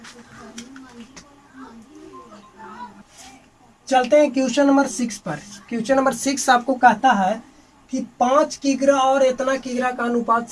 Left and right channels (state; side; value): identical; both; correlation 1.00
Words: चलते हैं क्वेश्चन नंबर 6 पर। क्वेश्चन नंबर 6 आपको कहता है कि 5 किग्रा और इतना किग्रा का अनुपात